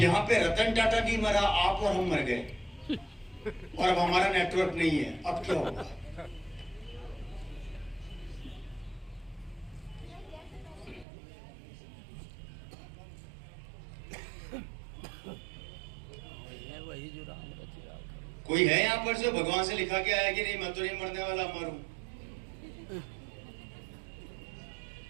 पे रतन टाटा नहीं मरा, आप और हम मर गए, और अब हमारा नेटवर्क नहीं है। अब क्या होगा? वही जो राम रचिरा। कोई है यहां पर जो भगवान से लिखा के आया कि नहीं मैं तो नहीं मरने वाला, मरूं?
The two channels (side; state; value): left; drops out; at 11.1 s